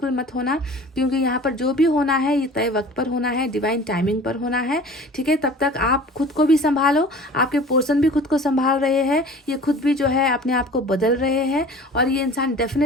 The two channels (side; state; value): both; normal; correlation 0.43